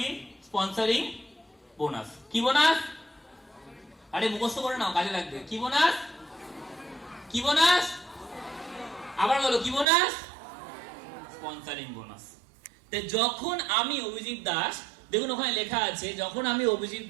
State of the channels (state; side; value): drops out; left; at 9.9 s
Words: Sponsoring bonus. কি বোনাস? আরে মুখস্থ করে নাও, কাজে লাগবে। কি বোনাস? কি বোনাস? আবার বলো, কি বোনাস? Sponsoring bonus. যখন আমি অভিজিৎ দাস, দেখুন ওখানে লেখা আছে, যখন আমি অভিজিৎ